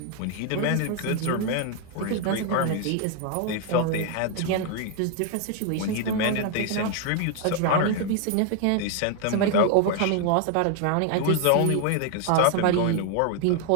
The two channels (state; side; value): different; both; correlation 0.00